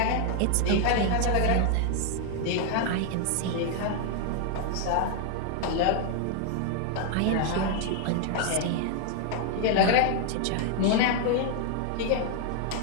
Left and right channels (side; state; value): both; different; correlation 0.00